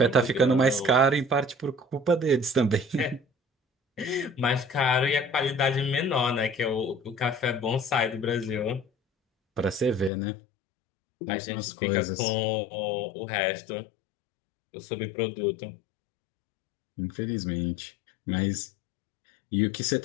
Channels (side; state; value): right; drops out; at 10.1 s